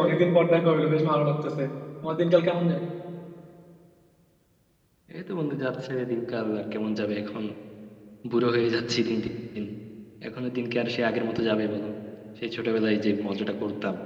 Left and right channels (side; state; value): both; identical; correlation 1.00